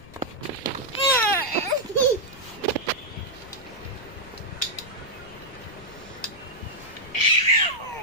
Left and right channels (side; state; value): left; noise; rumble, 20 dB below the sound